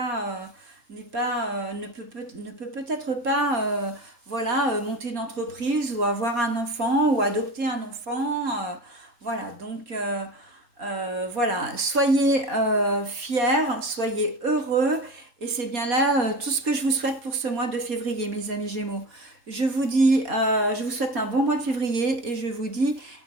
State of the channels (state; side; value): late; left; 3.7 ms